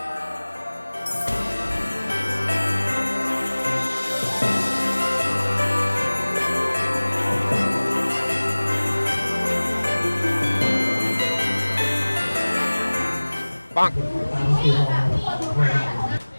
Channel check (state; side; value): inverted; both; correlation -1.00